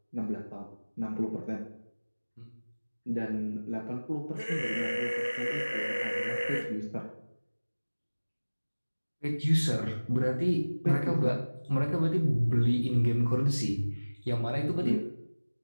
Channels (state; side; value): inverted; both; correlation -1.00